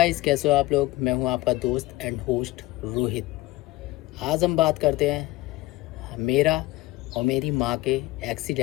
कैसे हो आप लोग। मैं हूं आपका दोस्त एंड होस्ट रोहित। आज हम बात करते हैं मेरा और मेरी माँ के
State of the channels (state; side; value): quieter; right; 18.6 dB